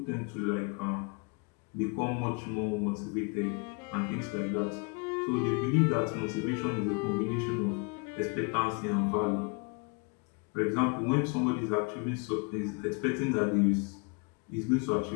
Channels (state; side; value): quieter; right; 33.1 dB